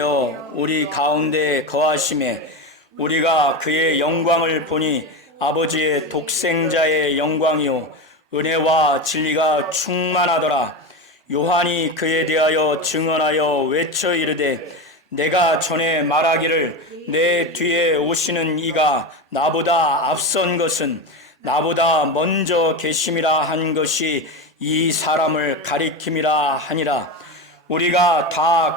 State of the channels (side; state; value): both; normal; correlation 0.19